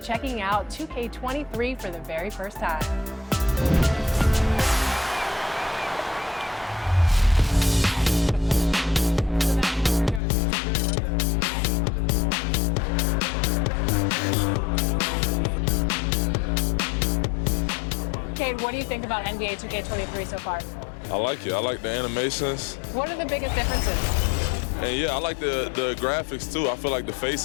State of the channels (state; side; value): drops out; right; at 10.2 s